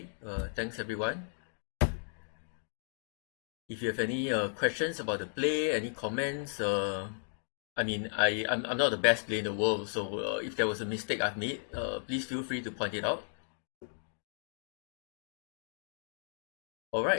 thanks everyone. If you have any questions about the play, any comments, I mean, I'm not the best player in the world, so if there was a mistake I've made, please feel free to point it out.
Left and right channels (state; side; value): silent; right; digital silence